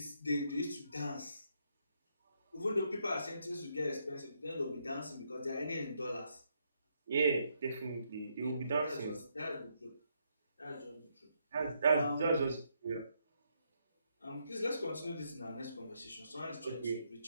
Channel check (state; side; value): inverted; both; correlation -0.77